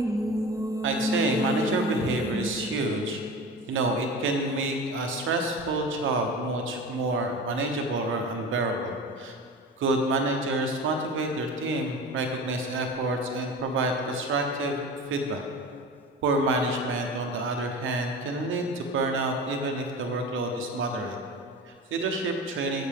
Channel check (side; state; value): both; normal; correlation 0.33